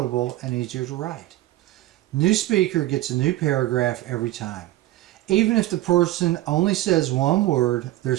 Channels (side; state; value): left; quieter; 16.3 dB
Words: and easier to write. New speaker gets a new paragraph every time. Even if the person only says one word, there